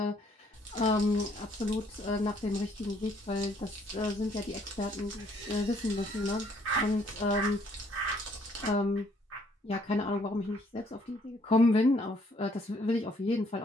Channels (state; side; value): normal; both; correlation 0.65